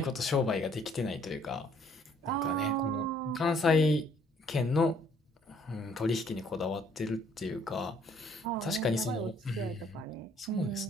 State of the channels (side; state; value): both; normal; correlation 0.63